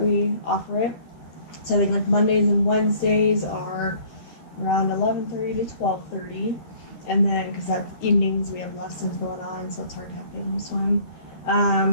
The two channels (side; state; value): right; late; 12 ms